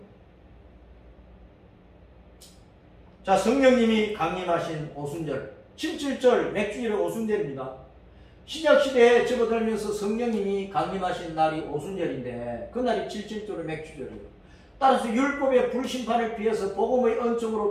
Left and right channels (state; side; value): identical; both; correlation 1.00